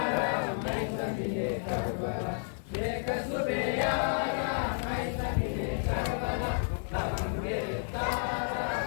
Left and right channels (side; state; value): right; silent; digital silence